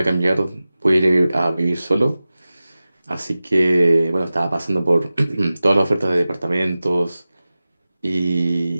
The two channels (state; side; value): inverted; both; correlation -0.96